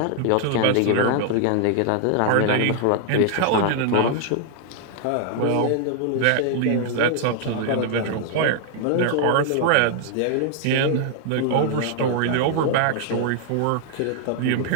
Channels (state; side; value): different; both; correlation 0.00